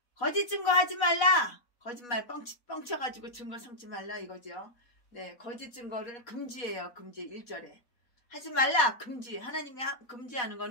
하지 말라. 거짓말 뻥쳐가지고 증거 삼지 말라 이거죠. 네, 거짓 증거를 금지해요. 금지 1절에. 하지 말라. 금지. 하나님이 금지하는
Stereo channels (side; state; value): right; late; 4.1 ms